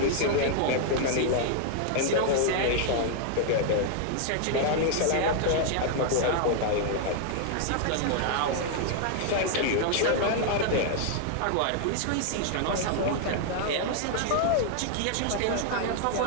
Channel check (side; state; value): both; different; correlation 0.00